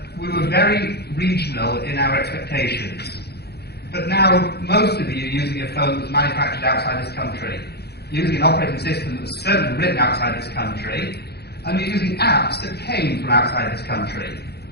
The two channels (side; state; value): right; late; 0.47 ms